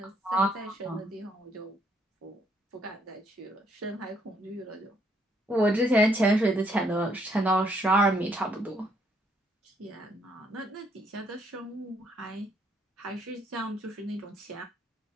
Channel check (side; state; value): both; normal; correlation 0.70